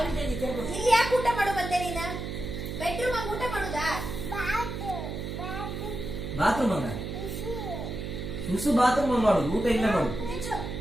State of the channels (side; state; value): right; noise; hum, 6 dB below the sound